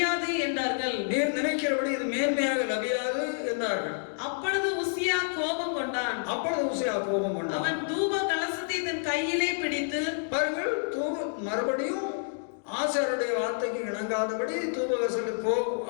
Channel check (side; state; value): right; silent; digital silence